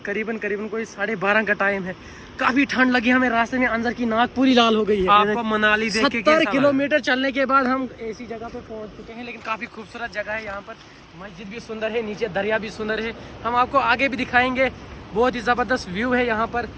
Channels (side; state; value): both; identical; correlation 1.00